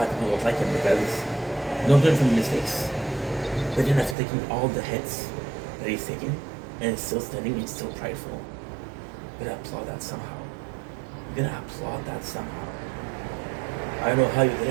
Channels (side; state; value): left; drops out; at 4.2 s